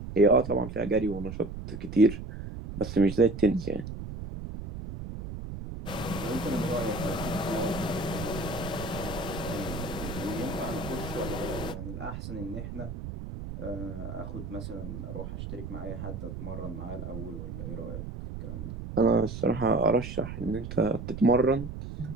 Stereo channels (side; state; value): right; noise; rumble, 8 dB below the sound